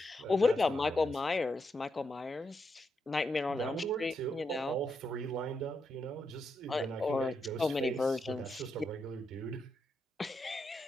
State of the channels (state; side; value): normal; both; correlation 0.83